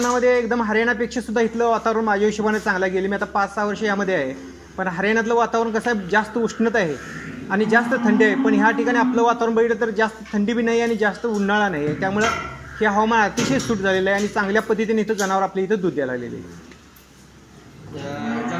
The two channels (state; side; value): identical; both; correlation 1.00